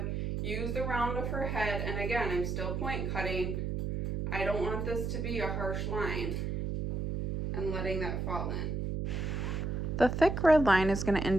use the round of her head, and again, I'm still point cutting. I don't want this to be a harsh line, and letting that fall in. The thick red line is going to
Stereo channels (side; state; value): right; noise; hum, 2 dB below the sound